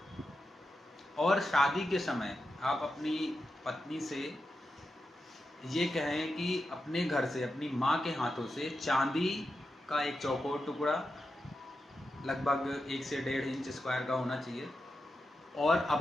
और शादी के समय आप अपनी पत्नी से ये कहें कि अपने घर से अपनी माँ के हाथों से चांदी का एक चौकोर टुकड़ा लगभग 1 से 1.5 इंच स्क्वायर का होना चाहिए, और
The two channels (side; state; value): both; normal; correlation 0.89